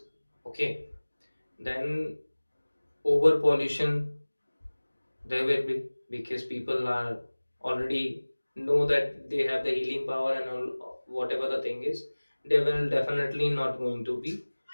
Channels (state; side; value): inverted; both; correlation -1.00